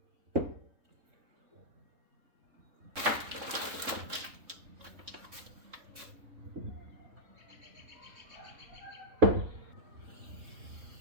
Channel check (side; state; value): left; late; 3.7 ms